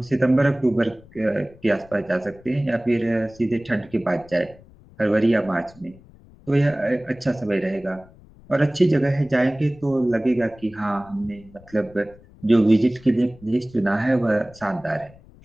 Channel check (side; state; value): left; noise; rumble, 24 dB below the sound